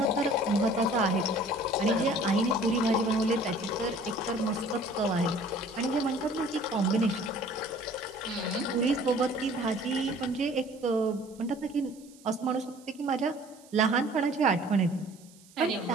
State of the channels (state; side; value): noise; right; hiss, 25 dB below the sound